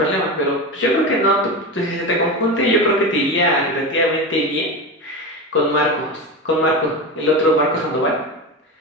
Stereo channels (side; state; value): both; normal; correlation 0.22